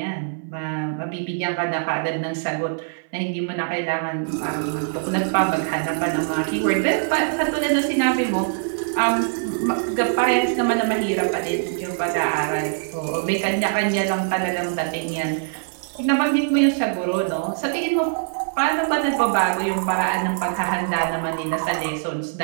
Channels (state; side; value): silent; left; 57 dB below the other